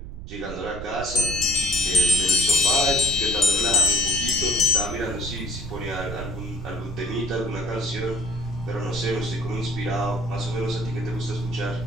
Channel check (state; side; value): noise; right; rumble, 11 dB below the sound